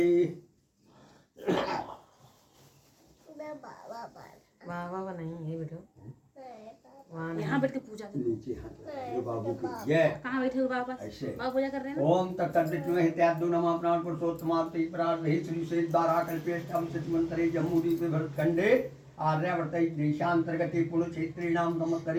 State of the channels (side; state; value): both; identical; correlation 1.00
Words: बाबा नहीं है बेटा, यहाँ बैठ के पूजा नीचे हाथ बाबू की जय। कहाँ बैठे हो बाबा? ऐसे बाबा पूजा कर रहे हैं। ओम तत्सवितुर्वरेण्यं नमः प्राण पुरुषोत्तमाप्ति प्रार्थे श्री से द्वारा कल्पेष्टम सिद्धमंतरे जम्मूदीप भरतखंडे आर्यावर्त देशांतर्गते पुण्यक्षेत्रीणाम